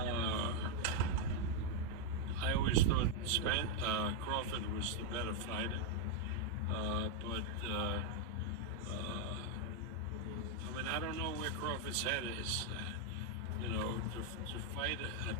I always thought Crawford was the better fighter, but I don't know where Crawford's head is. To fight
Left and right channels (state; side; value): normal; both; correlation 0.01